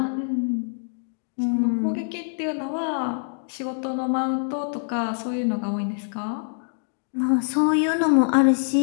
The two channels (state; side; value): silent; right; digital silence